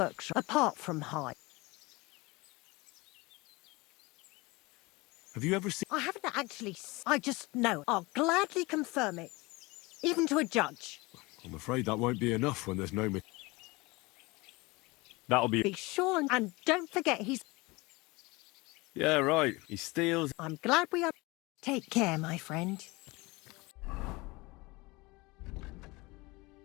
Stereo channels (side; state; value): right; quieter; 23.6 dB